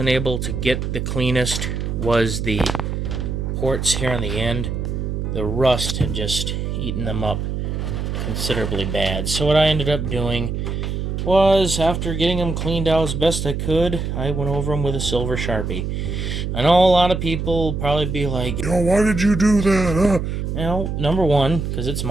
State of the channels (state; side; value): noise; right; hum, 3 dB below the sound